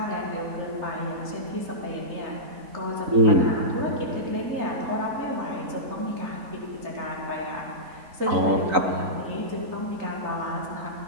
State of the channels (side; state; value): left; late; 3.9 ms